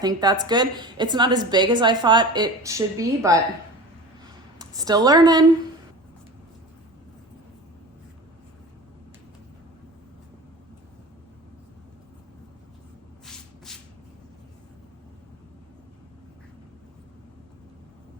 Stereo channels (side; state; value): both; normal; correlation 0.34